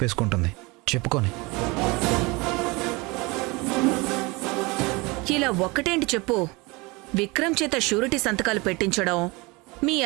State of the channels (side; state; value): left; quieter; 25.4 dB